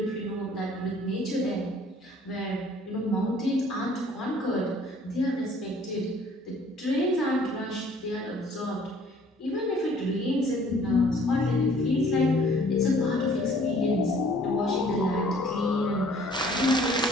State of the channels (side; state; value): both; normal; correlation 0.56